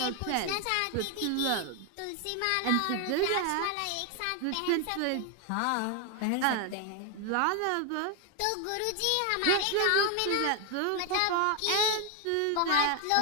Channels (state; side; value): different; both; correlation 0.01